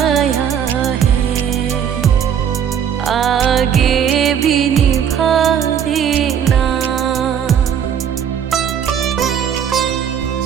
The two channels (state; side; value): quieter; left; 8.5 dB